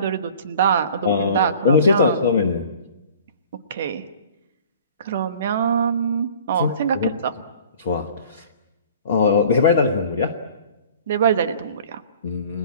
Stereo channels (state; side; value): inverted; both; correlation -0.48